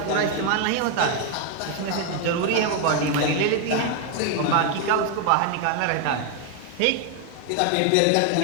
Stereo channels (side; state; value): both; different; correlation 0.01